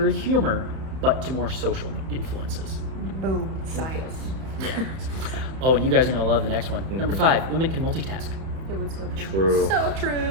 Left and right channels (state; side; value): late; left; 31 ms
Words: humor, but to more social influences. Boom, science. Oh, and you guys are going to love the next one. Number 5, women can multitask. It would so True. So